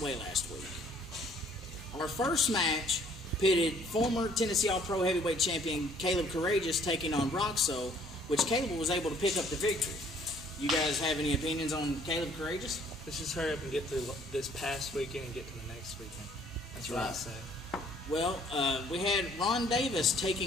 last week. Our first match pitted former Tennessee All-Pro Heavyweight Champion Caleb Courageous taking on Roxo, which Caleb was able to pick up the victory. You guys have any opinions on Caleb Courageous? Let's just hurry up and get through this past weekend and get to the next weekend. That's what I say. Well, we had Ron Davis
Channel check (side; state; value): both; normal; correlation 0.59